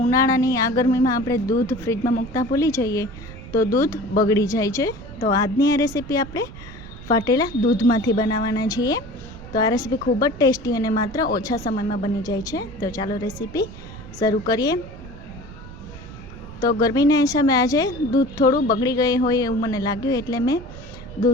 ઉનાળાની આ ગરમીમાં આપણે દૂધ ફ્રીજમાં મૂકતા ભૂલી જઈએ તો દૂધ બગડી જાય છે. તો આજની આ રેસીપી આપણે ફાટેલા દૂધમાંથી બનાવવાના છીએ. તો આ રેસીપી ખૂબ જ ટેસ્ટી અને માત્ર ઓછા સમયમાં બની જાય છે. તો ચાલો રેસીપી શરૂ કરીએ. તો ગરમીના હિસાબે આજે દૂધ થોડું બગડી ગયું હોય એવું મને લાગ્યું, એટલે મેં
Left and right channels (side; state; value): right; noise; rumble, 15 dB below the sound